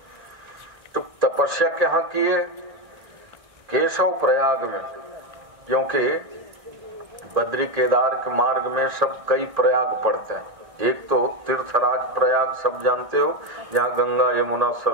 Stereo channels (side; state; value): left; late; 1.6 ms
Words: तो तपस्या कहाँ किए? केशव प्रयाग में, क्योंकि बद्री केदार के मार्ग में सब कई प्रयाग पड़ते हैं। एक तो तीर्थराज प्रयाग सब जानते हो, जहाँ गंगा यमुना